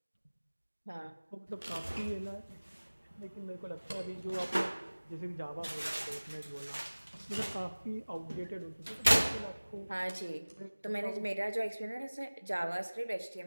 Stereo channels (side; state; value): both; inverted; correlation -1.00